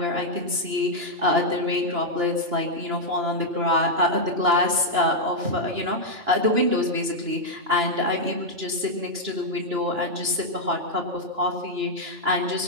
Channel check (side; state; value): left; late; 2.9 ms